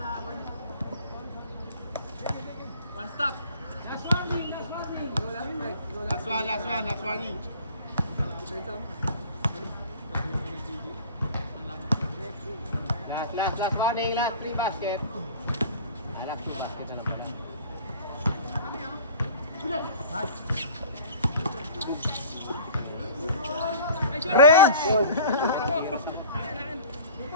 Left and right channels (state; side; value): inverted; both; correlation -0.45